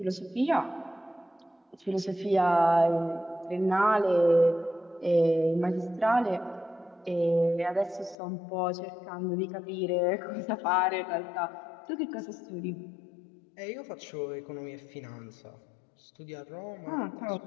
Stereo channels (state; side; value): drops out; right; at 8.2 s